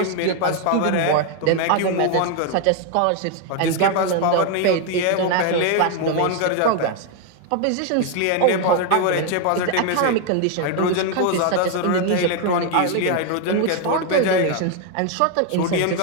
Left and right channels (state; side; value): different; both; correlation 0.01